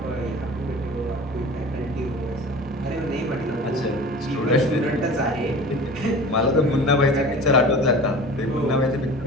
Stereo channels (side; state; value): both; normal; correlation 0.39